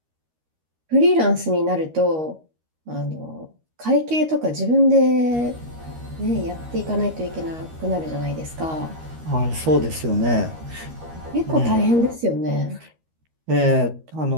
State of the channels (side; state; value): left; late; 13 ms